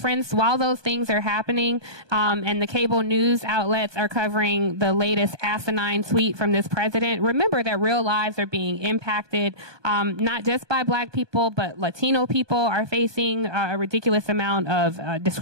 while those things are happening, and the cable news outlets are covering the latest asinine tweet from this president, remember that real lives are being impacted, not just by black people, but Latino people are facing a ridiculous amount of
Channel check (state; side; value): late; left; 1.2 ms